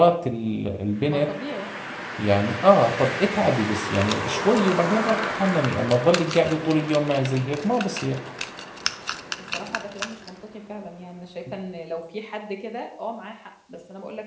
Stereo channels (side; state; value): both; identical; correlation 1.00